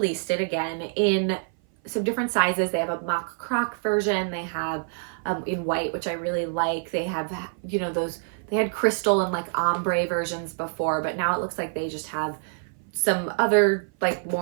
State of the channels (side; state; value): left; silent; 57 dB below the other